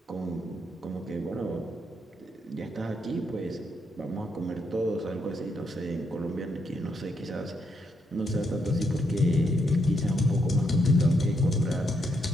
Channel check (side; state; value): both; normal; correlation 0.77